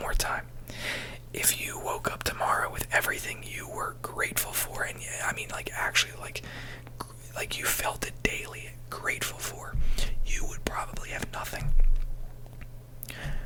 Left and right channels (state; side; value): identical; both; correlation 1.00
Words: time. If you woke up tomorrow with everything you were grateful for, and I mean like actually like you felt it daily, grateful for, you would probably have nothing.